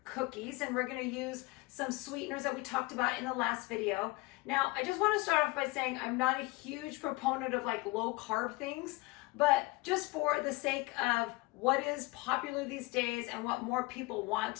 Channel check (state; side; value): quieter; right; 22.9 dB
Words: cookies, and we're going to use some sweeteners that we talked about in the last video. Now, I just want to start off by saying I'm not a huge proponent of like low carb things, but just for the sake of what is popular these days and what more people